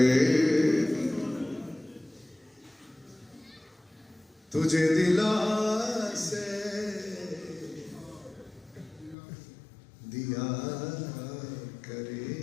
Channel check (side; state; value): right; drops out; at 9.2 s